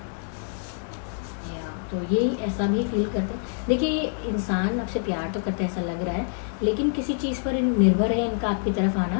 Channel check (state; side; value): silent; right; digital silence